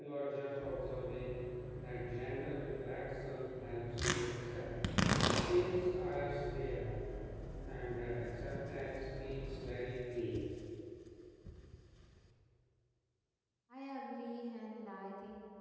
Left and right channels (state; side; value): identical; both; correlation 1.00